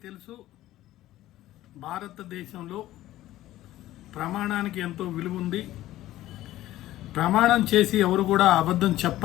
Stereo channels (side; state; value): right; quieter; 14.9 dB